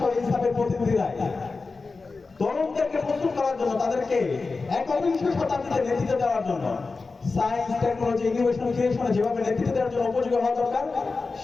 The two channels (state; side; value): quieter; right; 4.1 dB